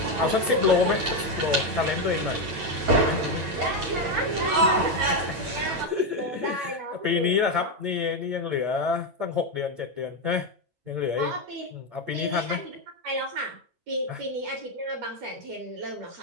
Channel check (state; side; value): late; left; 8.8 ms